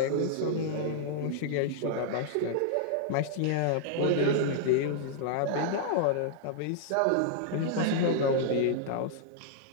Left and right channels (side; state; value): both; different; correlation -0.01